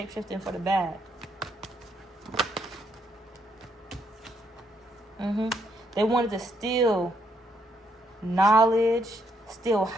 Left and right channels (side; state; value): both; normal; correlation 0.74